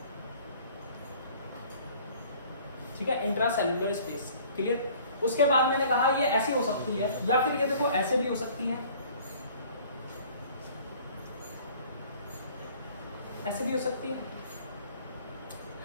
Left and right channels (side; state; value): both; inverted; correlation -0.52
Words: ठीक है, इंट्रा सेल्यूलर स्पेस। क्लियर? उसके बाद मैंने कहा ये ऐसी हो सकती है या फिर ये देखो ऐसे भी हो सकती है, ऐसे भी हो सकती है?